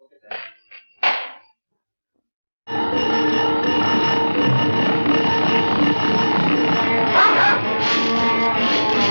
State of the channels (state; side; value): inverted; both; correlation -1.00